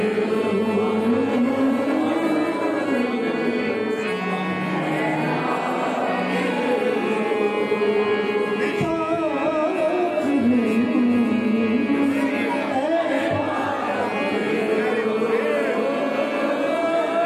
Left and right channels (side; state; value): both; identical; correlation 1.00